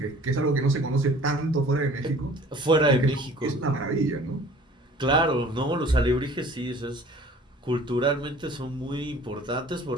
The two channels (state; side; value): normal; both; correlation 0.49